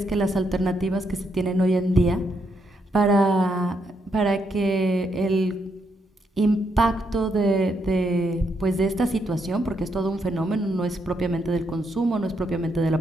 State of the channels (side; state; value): both; normal; correlation 0.78